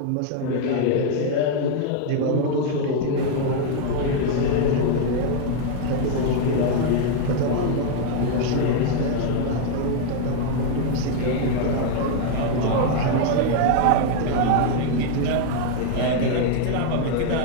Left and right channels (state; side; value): different; both; correlation 0.00